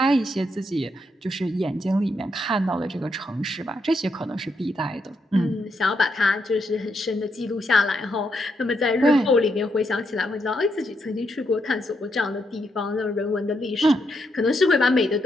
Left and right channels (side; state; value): both; normal; correlation 0.79